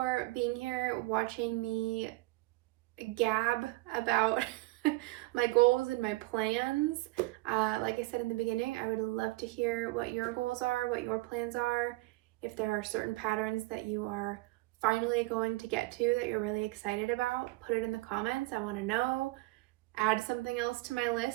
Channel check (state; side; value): quieter; left; 21.3 dB